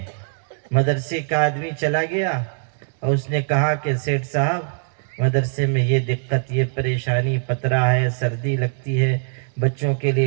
مدرسے کا آدمی چلا گیا اور اس نے کہا کہ سیٹھ صاحب مدرسے میں یہ دقت، یہ پریشانی، پترا ہے، سردی لگتی ہے، بچوں کے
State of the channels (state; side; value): silent; left; digital silence